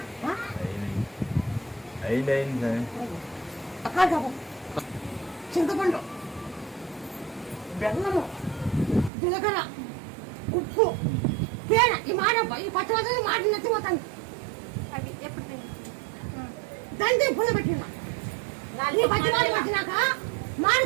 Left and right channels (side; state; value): left; drops out; at 9.1 s